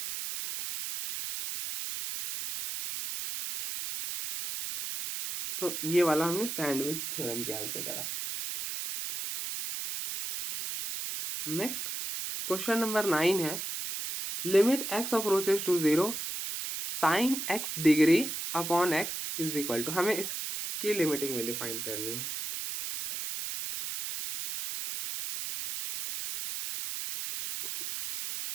तो ये वाला हमने सैंडविच थ्योरम के हेल्प से करा। नेक्स्ट क्वेश्चन नंबर 9 है, limit x approaches to 0 sine x degree upon x is equal to, हमें इसकी लिमिटिंग वैल्यू फाइंड करनी है।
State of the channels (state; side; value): noise; right; hiss, 5 dB below the sound